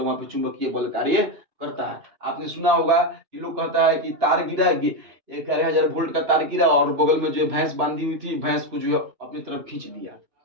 वहां पे चुंबकीय बल कार्य करता है। आपने सुना होगा कि लोग कहता है कि तार गिरा, 11,000 वोल्ट का तार गिरा और बगल में जो है भैंस बांधी हुई थी, भैंस को जो है अपनी तरफ खींच दिया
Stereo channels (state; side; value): late; left; 2.9 ms